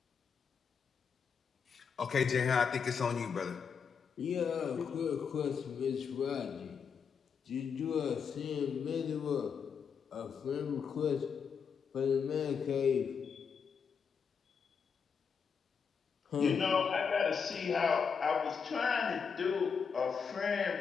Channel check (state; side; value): quieter; right; 6.3 dB